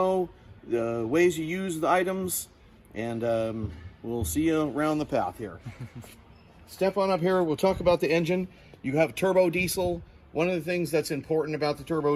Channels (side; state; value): both; identical; correlation 1.00